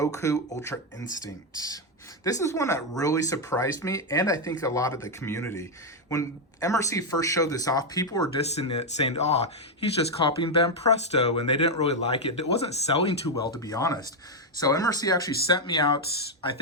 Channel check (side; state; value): both; normal; correlation 0.03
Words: Ultra Instinct. This is one that really surprised me, and I think a lot of the community. When MRC first showed this off, people were dissing it, saying, oh, he's just copying Van Presto, and they didn't really like it. It wasn't selling too well, to be honest. So MRC actually sent me out, I